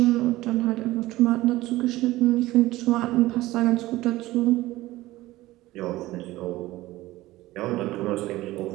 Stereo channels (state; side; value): quieter; left; 17.5 dB